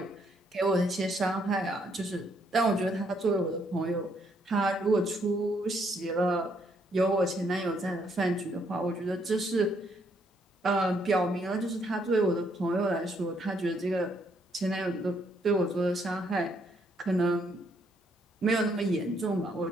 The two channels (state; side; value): normal; both; correlation 0.71